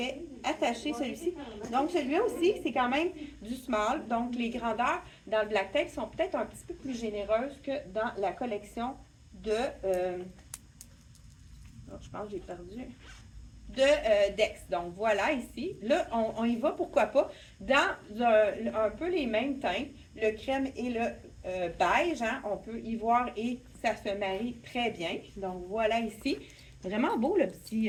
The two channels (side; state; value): both; identical; correlation 1.00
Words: attacher celui-ci. Donc, celui-là aussi, c'est quand même du small. Donc, les grandeurs dans le Black Tape sont peut-être un petit peu plus généreuses que dans la collection de... je pense que j'ai perdu. De Dex. Donc, voilà ici. Là, on y va, pourquoi pas, dans un peu les mêmes teintes, le crème et le beige. Hein, on peut y voir et ça se marie très bien. Donc, voilà ici. Vraiment beau, le